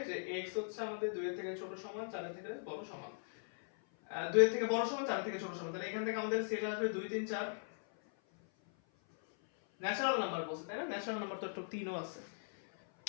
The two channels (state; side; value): silent; right; 52 dB below the other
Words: যে x হচ্ছে আমাদের 2 এর থেকে ছোট সমান, 4 এর থেকে বড় সমান, 2 এর থেকে বড় সমান, 4 এর থেকে ছোট সমান, তাহলে এখান থেকে আমাদের সেট আসবে 2 3 4, ন্যাচারাল নাম্বার বলছে তাই না, ন্যাচারাল নাম্বার তো একটা 3 ও আছে।